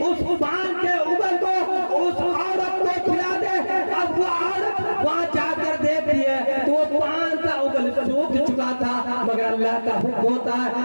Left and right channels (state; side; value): inverted; both; correlation -1.00